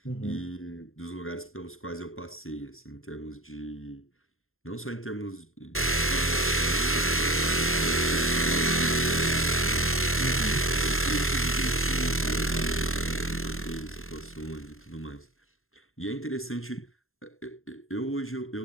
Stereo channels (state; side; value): late; right; 0.61 ms